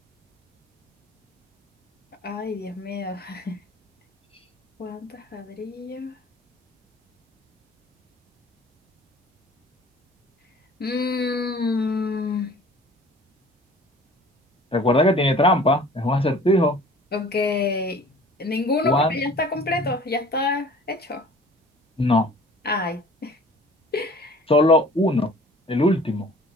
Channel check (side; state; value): both; normal; correlation 0.48